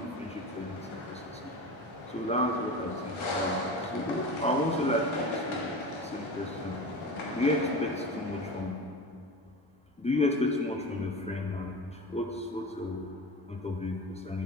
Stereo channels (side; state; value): both; normal; correlation 0.29